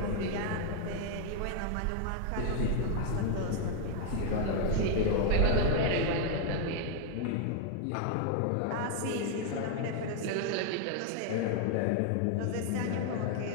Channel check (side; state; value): both; different; correlation 0.00